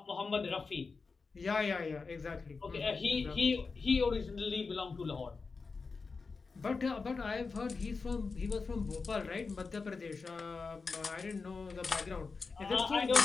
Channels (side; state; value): right; quieter; 4.5 dB